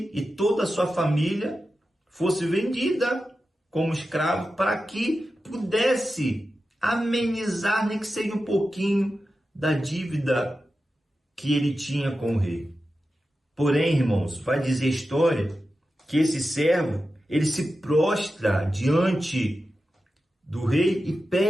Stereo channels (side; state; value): both; normal; correlation 0.92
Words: e toda a sua família fosse vendida como escravo para que pudesse amenizar, nem que seja um pouquinho, da dívida que ele tinha com o rei. Porém, irmãos, vai dizer a história que esse servo, ele se prostra diante do rei e